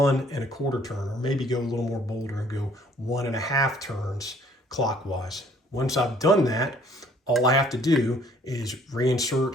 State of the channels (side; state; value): both; normal; correlation 0.59